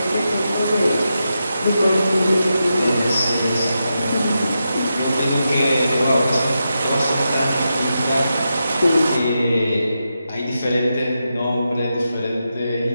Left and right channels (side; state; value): both; inverted; correlation -0.87